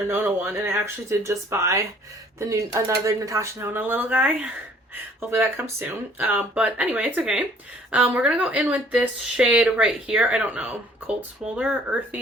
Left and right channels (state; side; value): normal; both; correlation 0.57